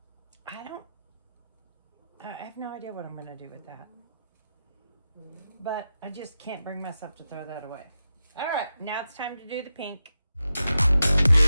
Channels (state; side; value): inverted; both; correlation -0.89